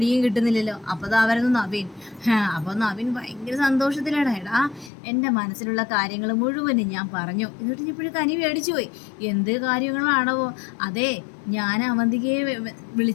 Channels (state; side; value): drops out; right; at 4.9 s